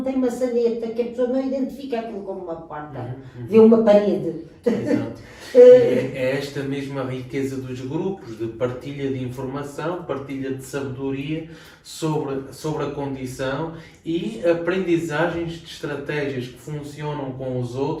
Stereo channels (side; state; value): both; identical; correlation 1.00